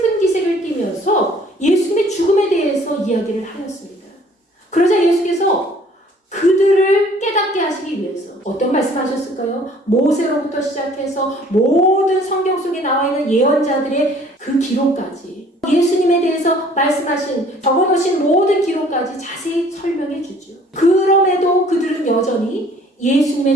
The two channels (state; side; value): normal; both; correlation 0.55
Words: 기색을 띠면서 예수님의 죽음에 대해서 이야기를 하였습니다. 그러자 예수께서 그들을 깨닫게 하시기 위해서 어떤 말씀하셨을까요? 모세로부터 시작해서 모든 성경 속에 나와 있는 예언자들의 그 기록까지 예수님에 대해서 말씀하신 적어놓으신 모든 기록까지 자세히 설명해 주죠. 그럼에도 그들은 여전히